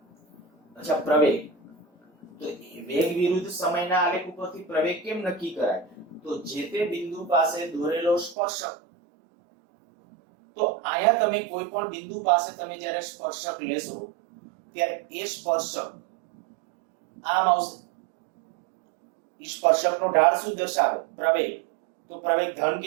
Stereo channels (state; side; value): drops out; left; at 8.3 s